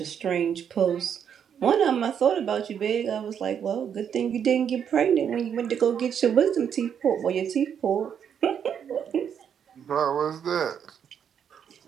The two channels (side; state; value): left; quieter; 8.2 dB